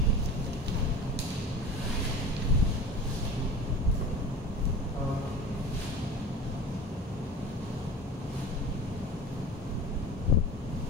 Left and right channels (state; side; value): normal; both; correlation 0.35